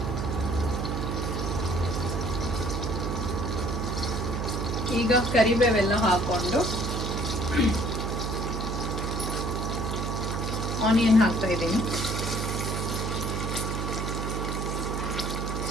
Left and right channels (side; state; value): right; noise; hum, 2 dB below the sound